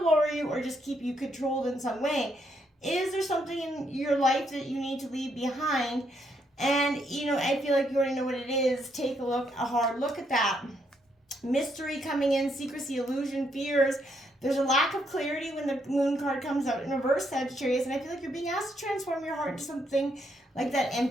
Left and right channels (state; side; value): normal; both; correlation 0.75